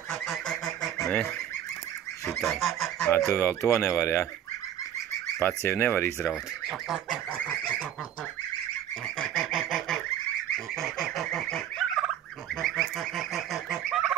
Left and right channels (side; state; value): left; quieter; 10.5 dB